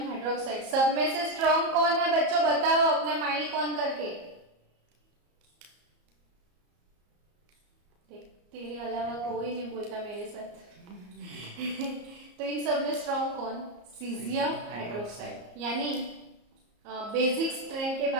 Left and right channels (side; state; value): left; late; 34 ms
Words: hydroxide, सब में से स्ट्रॉन्ग कौन है बच्चों? बताओ अपना माइक ऑन करके। तेरे अलावा कोई नहीं बोलता मेरे साथ। तो इन सब में स्ट्रॉन्ग कौन? Caesium hydroxide. यानी बेसिक स्ट्रेंथ के